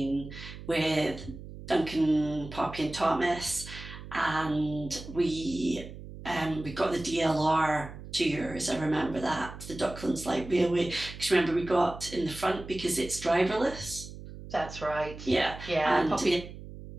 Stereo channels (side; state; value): right; noise; hum, 13 dB below the sound